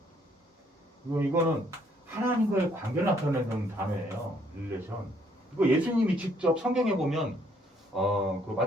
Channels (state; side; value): normal; both; correlation 0.67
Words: 이거는 하나님과의 관계를 나타내는 단어예요. 릴레이션. 이거 예수님이 직접 성경에 보면 그